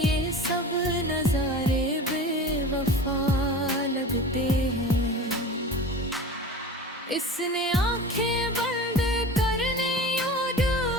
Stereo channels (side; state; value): both; normal; correlation 0.35